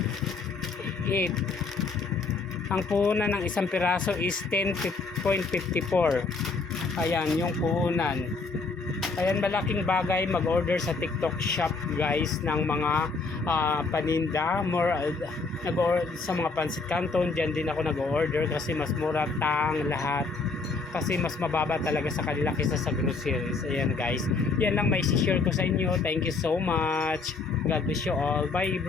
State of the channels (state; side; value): quieter; right; 4.2 dB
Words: 8. Ang puhunan ng isang piraso is 10.54. Ayan yung puhunan. Ayan, malaking bagay mag-order sa TikTok shop guys ng mga paninda. Sa mga Pancit Canton, dyan din ako nag-order kasi mas mura lahat. Kasi mas mababa talaga sa kanila kaysa sa groceries. Ayan guys, yan lang may share ko sa inyo. Thank you so much. God bless you all. Bye